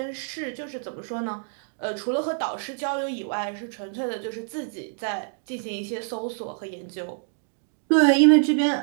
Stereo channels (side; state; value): left; silent; digital silence